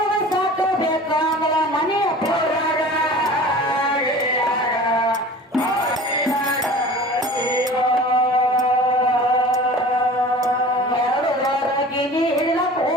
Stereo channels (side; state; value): both; normal; correlation 0.40